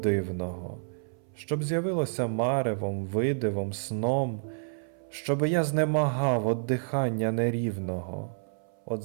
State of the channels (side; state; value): left; silent; 58 dB below the other